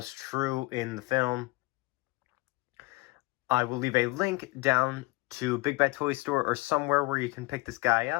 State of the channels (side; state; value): right; quieter; 23.6 dB